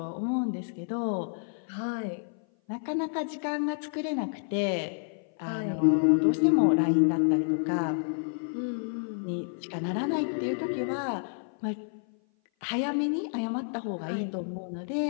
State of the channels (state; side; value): silent; right; 56 dB below the other